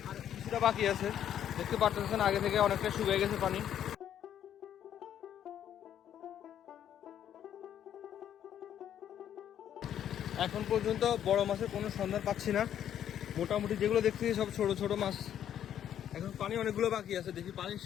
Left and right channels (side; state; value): right; quieter; 10.2 dB